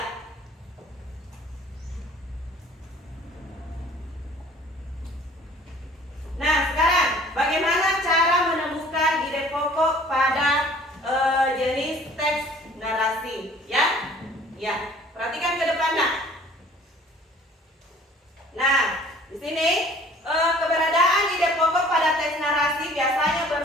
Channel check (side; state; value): both; normal; correlation 0.51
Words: Nah, sekarang bagaimana cara menemukan ide pokok pada jenis teks narasi? Ya, ya. Perhatikan ke depan nak. Nah, di sini keberadaan ide pokok pada teks narasi biasanya